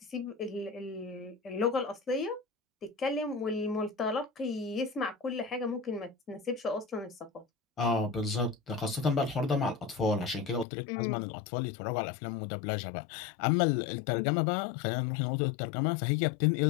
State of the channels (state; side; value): drops out; right; at 10.7 s